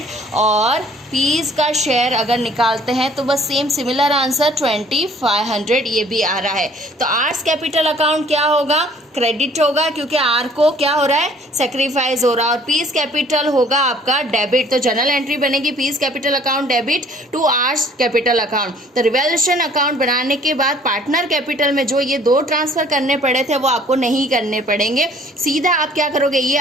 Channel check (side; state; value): both; normal; correlation 0.56